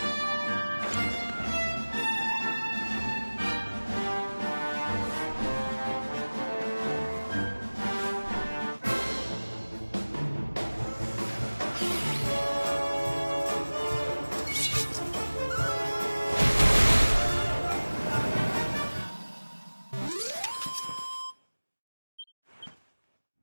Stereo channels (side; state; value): both; inverted; correlation -1.00